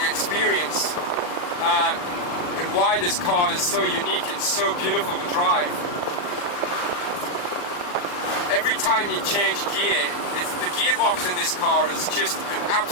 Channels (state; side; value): late; right; 40 ms